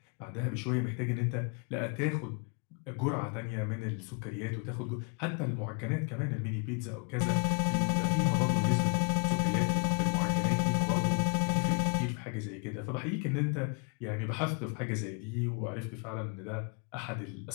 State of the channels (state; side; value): quieter; right; 38.0 dB